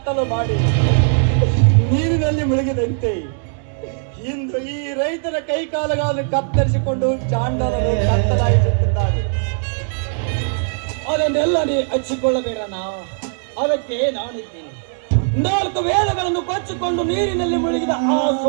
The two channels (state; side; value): silent; left; digital silence